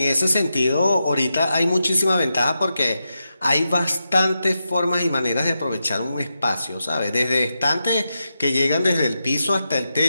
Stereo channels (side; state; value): both; inverted; correlation -0.88